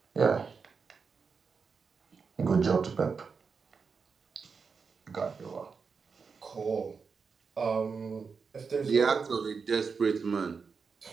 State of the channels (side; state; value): left; quieter; 5.3 dB